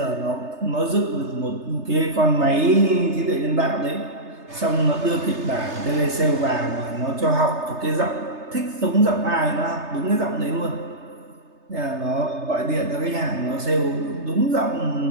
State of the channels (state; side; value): late; left; 3.3 ms